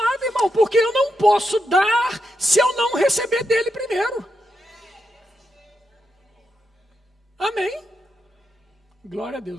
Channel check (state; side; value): normal; both; correlation 0.84